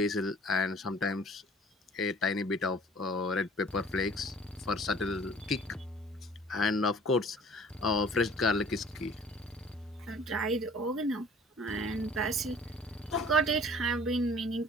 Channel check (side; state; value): both; normal; correlation 0.51